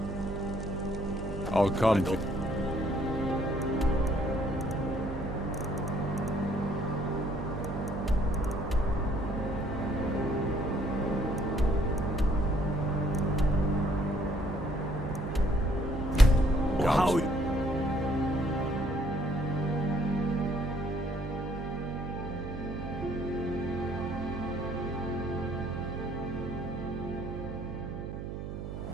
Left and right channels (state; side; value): noise; right; hum, 6 dB below the sound